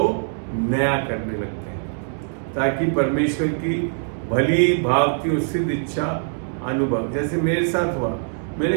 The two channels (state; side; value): silent; left; 64 dB below the other